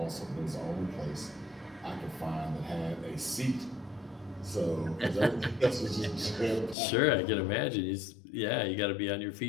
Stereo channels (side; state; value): right; drops out; at 6.8 s